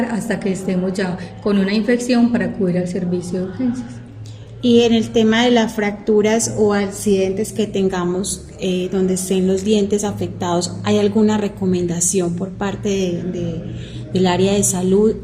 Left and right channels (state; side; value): identical; both; correlation 1.00